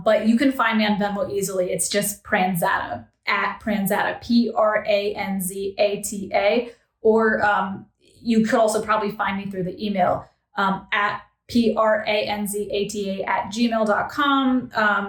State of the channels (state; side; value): identical; both; correlation 1.00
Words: you can find me on Venmo easily. It's just Pranzata, at Pranzata, Pranzata. Or you could also probably find me through the email at